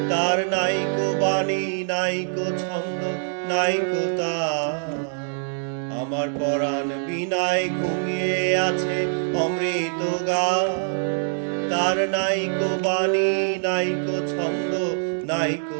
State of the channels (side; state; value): left; silent; digital silence